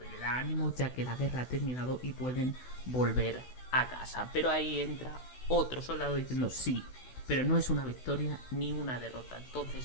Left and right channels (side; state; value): right; late; 16 ms